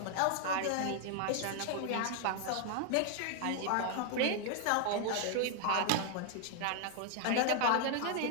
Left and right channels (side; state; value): both; different; correlation 0.00